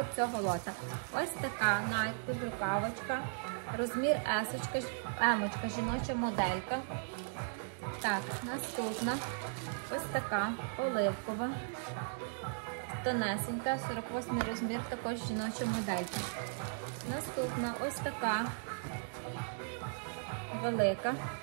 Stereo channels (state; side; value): silent; left; digital silence